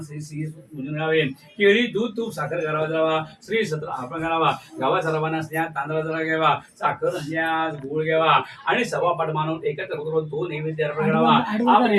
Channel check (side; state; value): both; identical; correlation 1.00